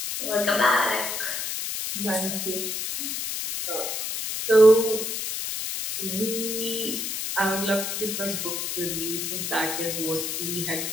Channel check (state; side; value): noise; left; hiss, 3 dB below the sound